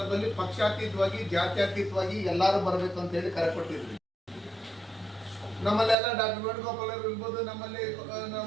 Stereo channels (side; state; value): left; drops out; at 6.0 s